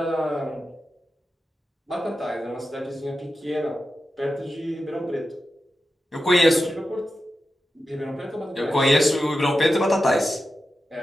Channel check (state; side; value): normal; both; correlation 0.91